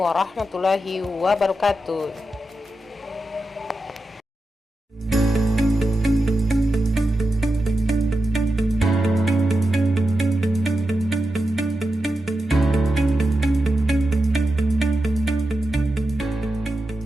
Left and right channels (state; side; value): normal; both; correlation 0.90